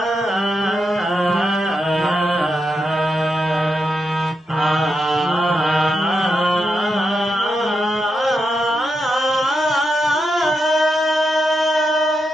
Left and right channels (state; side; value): normal; both; correlation 0.85